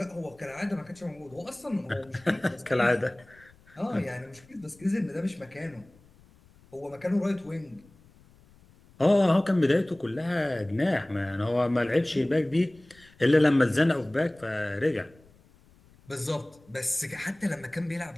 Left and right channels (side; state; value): left; noise; rumble, 28 dB below the sound